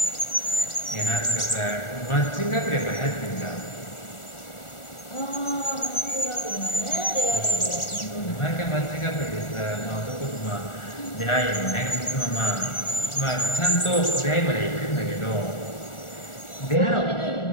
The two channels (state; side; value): late; right; 1.4 ms